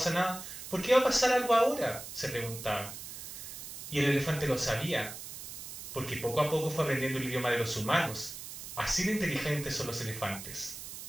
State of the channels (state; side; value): noise; right; hiss, 10 dB below the sound